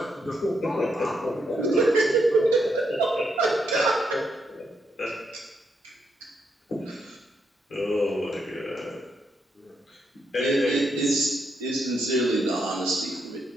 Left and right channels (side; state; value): both; normal; correlation 0.79